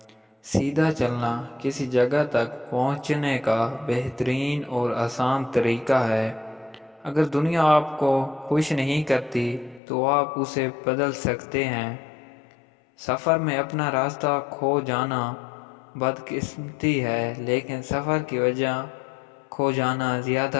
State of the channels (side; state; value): right; drops out; at 9.8 s